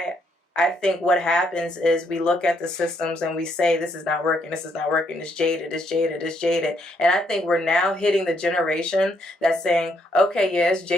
think what happens is we look at the systems and we say this is not working. This is not working. It's jaded. It's jaded. It's jaded. And I think we're now hitting the generation that's saying, okay, yeah, it's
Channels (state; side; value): normal; both; correlation 0.73